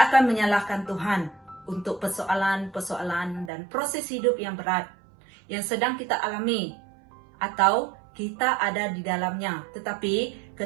akan menyalahkan Tuhan untuk persoalan-persoalan dan proses hidup yang berat yang sedang kita alami atau kita ada di dalamnya. Tetapi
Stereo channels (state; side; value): drops out; left; at 3.5 s